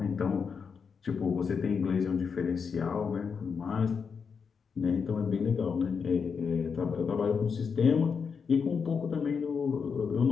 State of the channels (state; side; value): quieter; right; 6.0 dB